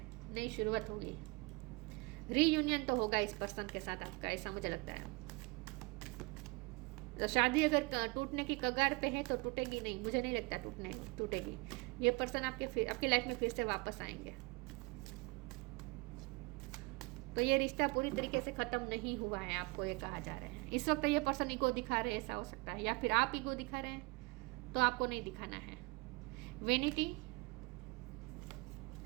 नई शुरुआत होगी, रीयूनियन तो होगा इस पर्सन के साथ आपका, ऐसा मुझे लगता है। तो शादी अगर टूटने की कगार पे है तो टूटेगी नहीं, मुझे नहीं लगता टूटेगी। ये पर्सन आपकी लाइफ में फिर से वापस आएंगे। तो ये रिश्ता पूरी तरीके से खत्म नहीं हुआ है, आपको ये कहा जा रहा है। इस वक्त ये पर्सन ईगो दिखा रहे हैं, ऐसा हो सकता है, या फिर आप ईगो दिखा रहे हैं, तो आपको नहीं दिखाना है। वेनिटी,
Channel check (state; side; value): quieter; left; 26.3 dB